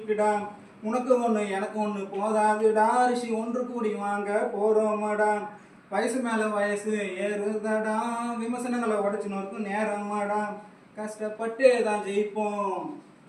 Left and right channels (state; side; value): identical; both; correlation 1.00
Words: உனக்கு ஒன்று எனக்கு ஒன்று போதாதுடா, ரிஷி ஒன்று கூடி வாங்க போகிறோமாடா. வயசு மேலே வயசு ஏறுதடா, விமர்சனங்களை உடைச்சுன்னு இருக்கும் நேரமாடா. கஷ்டப்பட்டே தான் ஜெயிப்போம்,